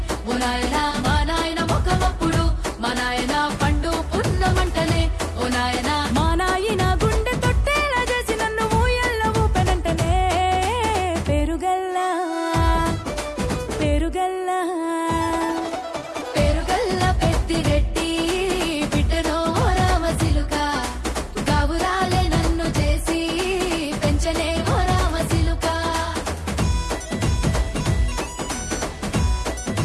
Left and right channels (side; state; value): both; identical; correlation 1.00